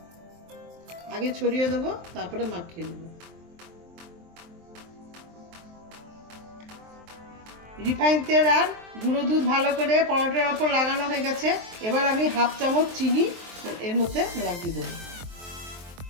আগে ছড়িয়ে দেবো, তারপরে মাখিয়ে নেব। রিফাইন তেল আর গুঁড়ো দুধ ভালো করে পরোটার ওপর লাগানো হয়ে গেছে। এবার আমি 1/2 চামচ চিনি এর মধ্যে লাগিয়ে দেবো।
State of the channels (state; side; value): late; left; 23 ms